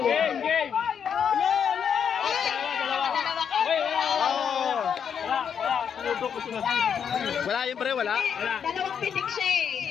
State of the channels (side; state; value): right; quieter; 7.6 dB